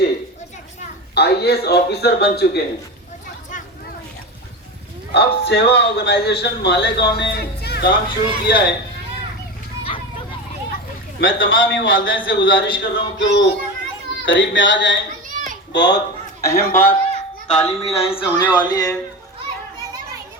IAS آفیسر بن چکے ہیں۔ اب سیوا آرگنائزیشن مالیگاؤں نے کام شروع کیا ہے۔ میں تمام ہی والدین سے گزارش کر رہا ہوں کہ وہ قریب میں آ جائیں۔ بہت اہم بات تعلیمی لائن سے ہونے والی ہے۔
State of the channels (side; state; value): both; normal; correlation 0.23